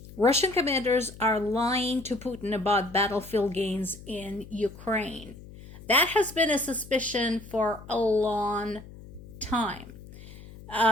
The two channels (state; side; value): noise; left; hum, 17 dB below the sound